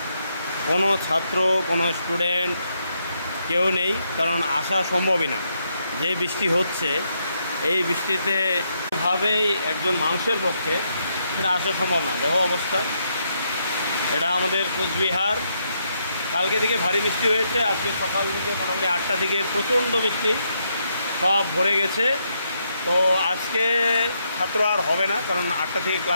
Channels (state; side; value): inverted; both; correlation -0.78